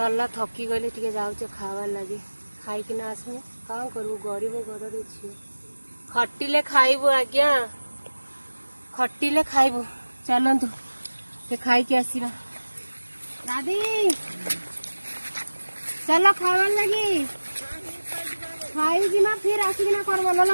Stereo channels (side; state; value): both; inverted; correlation -1.00